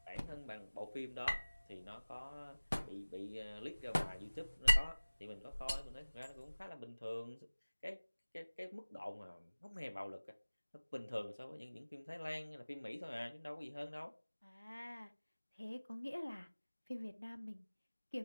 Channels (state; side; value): inverted; both; correlation -1.00